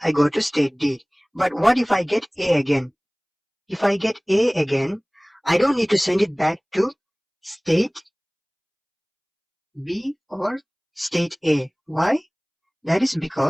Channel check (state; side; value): identical; both; correlation 1.00